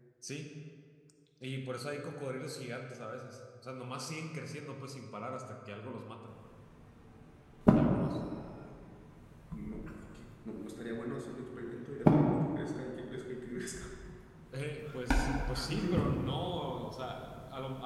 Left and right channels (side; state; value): both; identical; correlation 1.00